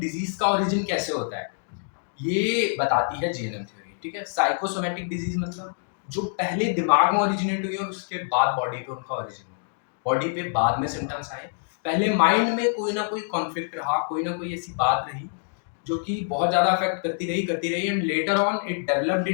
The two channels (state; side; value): silent; right; digital silence